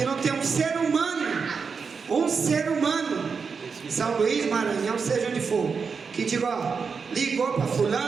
não tem um ser humano São Luís, Maranhão, seja onde for, que diga, ó, ligou para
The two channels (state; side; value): quieter; left; 5.5 dB